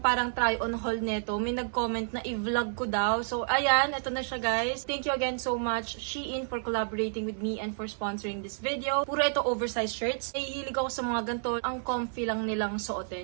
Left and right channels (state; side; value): silent; left; 58 dB below the other